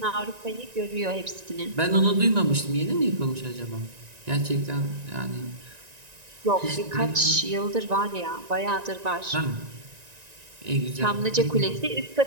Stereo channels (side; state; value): left; late; 1.9 ms